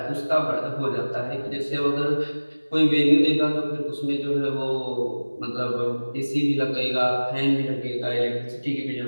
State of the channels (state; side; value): inverted; both; correlation -1.00